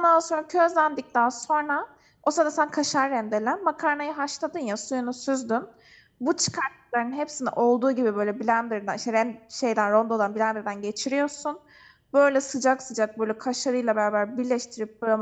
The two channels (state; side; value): identical; both; correlation 1.00